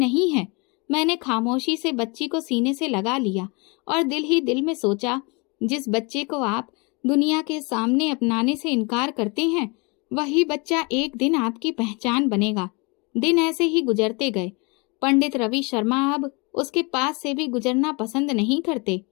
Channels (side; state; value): right; quieter; 29.5 dB